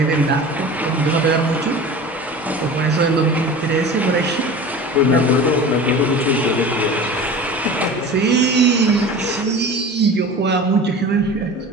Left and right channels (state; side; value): normal; both; correlation 0.36